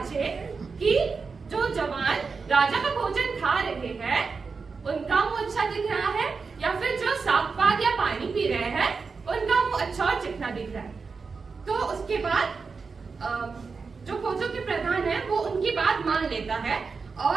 कि जो जवान राजा का भोजन खा रहे हैं उनका मुंह अच्छा दिख रहा है या फिर जो साग पात या पानी पी रहे हैं उनका मुंह अच्छा और चिकना दिख रहा है। तो उसके बाद जो खोजों के प्रधान है वो उनकी बात मान लेता है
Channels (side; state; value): left; quieter; 4.9 dB